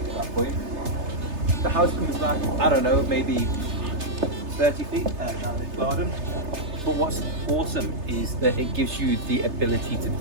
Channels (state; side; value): late; left; 3.3 ms